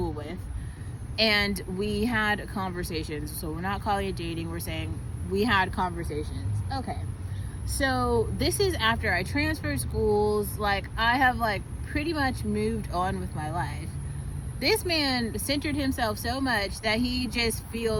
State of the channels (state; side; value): identical; both; correlation 1.00